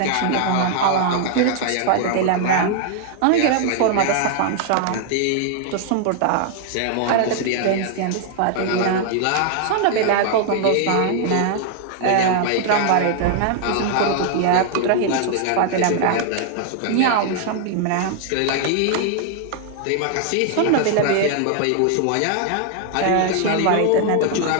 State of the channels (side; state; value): both; different; correlation 0.00